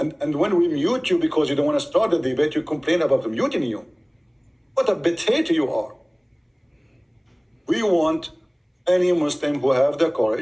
when we mute you because you don't want to start the debate, you complain about muting you. What a potato you are. We want any Muslim who have the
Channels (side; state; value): both; identical; correlation 1.00